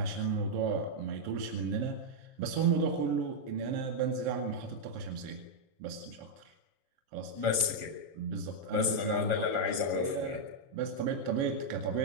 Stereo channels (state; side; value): late; left; 7.3 ms